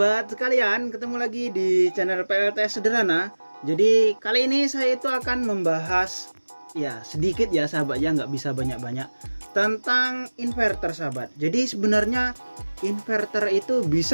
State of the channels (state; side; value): inverted; both; correlation -1.00